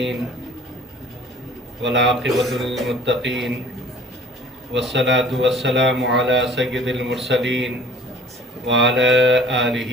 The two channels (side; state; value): both; normal; correlation 0.49